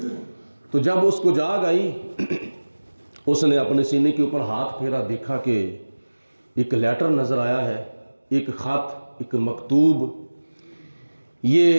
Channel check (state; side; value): inverted; both; correlation -1.00